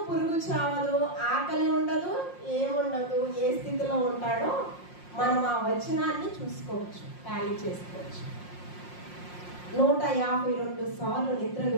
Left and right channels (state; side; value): late; right; 5.6 ms